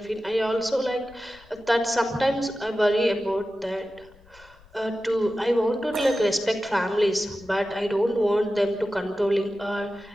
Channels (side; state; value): left; noise; rumble, 27 dB below the sound